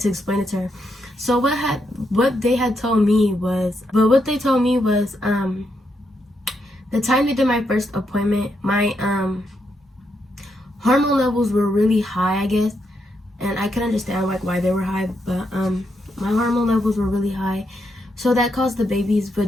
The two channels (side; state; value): both; normal; correlation 0.80